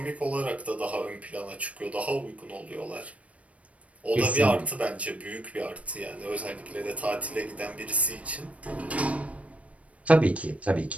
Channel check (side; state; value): left; late; 0.065 ms